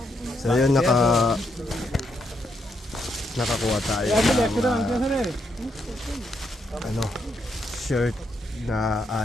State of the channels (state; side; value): normal; both; correlation 0.78